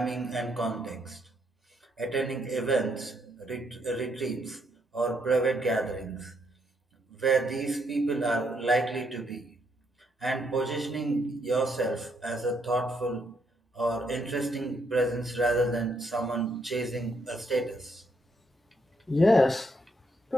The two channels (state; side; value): normal; both; correlation 0.75